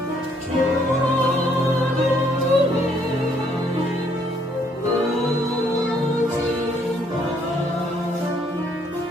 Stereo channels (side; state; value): both; normal; correlation 0.68